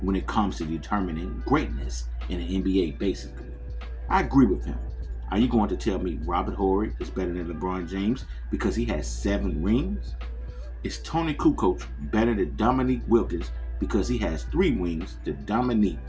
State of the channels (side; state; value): both; identical; correlation 1.00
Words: when it comes to determining greatness in the NBA, basically. I agree with him. Are you going to tell me Robert Horry is better than LeBron James because he has 7 rings? Is Tony Kukoc better than Dominique Wilkins because he has 3 rings to Dominique